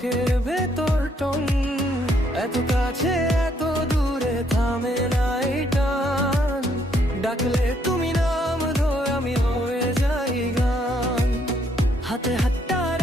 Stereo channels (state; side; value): normal; both; correlation 0.70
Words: ভেতর টন। এত কাছে এত দূরে থামে না এই টান, ডাকলে তুমি নাম ধরে আমি হয়ে যাই গান। হাতে হাতটা